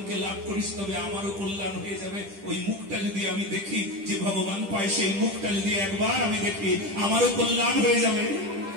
লাভ করিস তবে আমারও কল্যাণ হয়ে যাবে। ওই মুখটা যদি আমি দেখি যে ভগবান পায়, সেই মুখটা যদি একবার আমি দেখি, আমারও কল্যাণ হয়ে যাবে।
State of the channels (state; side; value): late; left; 10 ms